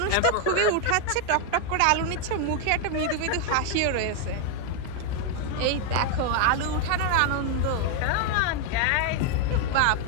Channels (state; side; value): different; both; correlation 0.01